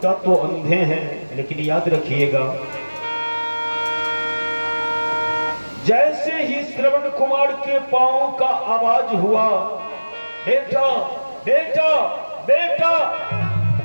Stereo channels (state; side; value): inverted; both; correlation -1.00